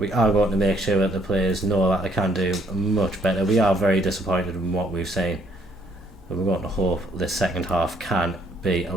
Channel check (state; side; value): normal; both; correlation 0.67